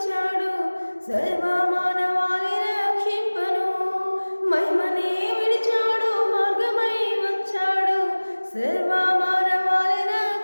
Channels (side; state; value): both; inverted; correlation -1.00